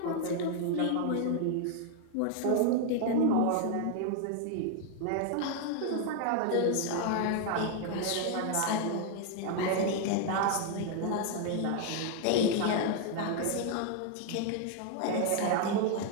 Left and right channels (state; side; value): different; both; correlation 0.00